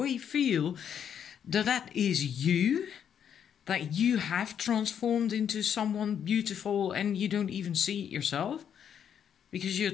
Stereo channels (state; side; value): quieter; right; 8.5 dB